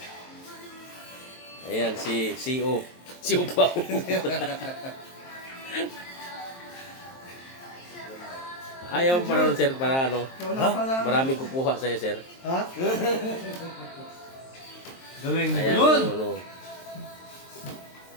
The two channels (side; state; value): right; late; 23 ms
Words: Ayan si CEO. Si Upaw. Ayaw pa rin sir para ano. Maraming kukuha sa'yo sir. Ha? Galing Ayan yun! yung ano.